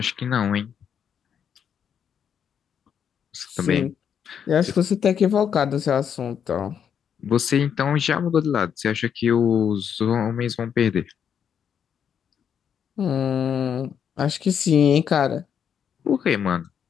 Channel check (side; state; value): right; quieter; 8.0 dB